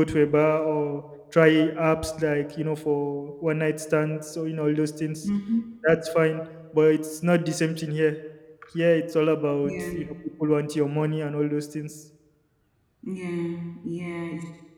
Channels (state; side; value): identical; both; correlation 1.00